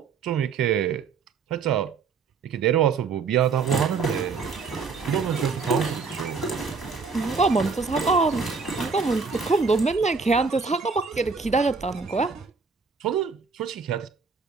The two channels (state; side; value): quieter; left; 5.0 dB